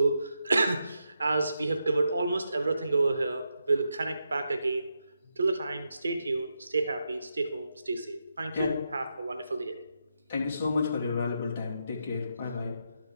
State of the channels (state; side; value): inverted; both; correlation -0.84